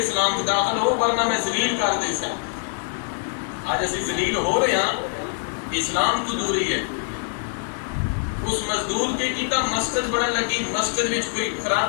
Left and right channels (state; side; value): silent; right; digital silence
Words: کو داخل ہو ورنہ میں ذلیل کر دے سا۔ آج اسی ذلیل ہو رہے ہیں، اسلام تو دوری ہے۔ اس مزدور کے کیتا مسجد بڑا لگی، مسجد میں کوئی